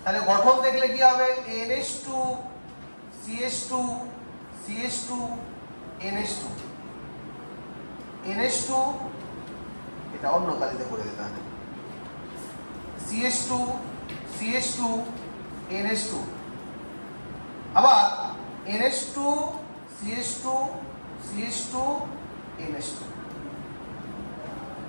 তাহলে গঠন দেখলে কি হবে? NH2 CH2 CH2 NH2 NH2, এটা অন্য কালিতে করে দিতে হবে, CH2 CH2 NH2, আবার NH2 CH2 CH2 NH2।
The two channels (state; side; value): inverted; both; correlation -1.00